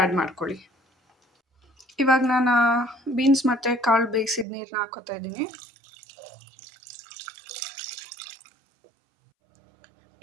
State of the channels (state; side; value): drops out; left; at 4.5 s